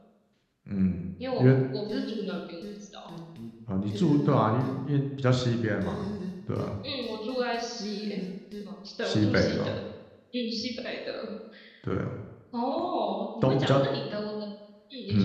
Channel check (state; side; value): identical; both; correlation 1.00